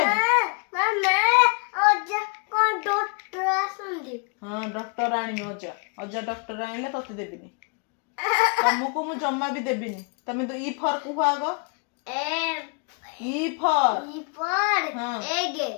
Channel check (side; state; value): right; quieter; 38.7 dB